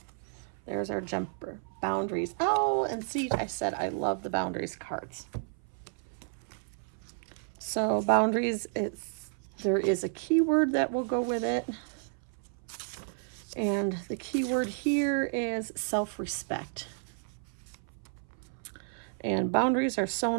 There's our jumper boundaries. Oh, and see, I said I love the boundaries cards. So boundaries, there is a keyword that will go with it. And the keyword here is self-respect. And boundaries are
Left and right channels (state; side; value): silent; left; 56 dB below the other